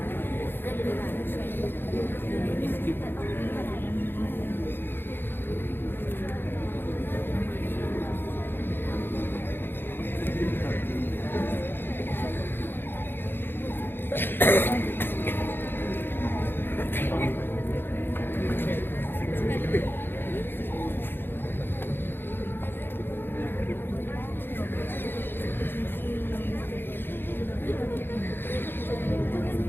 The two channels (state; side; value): late; right; 0.10 ms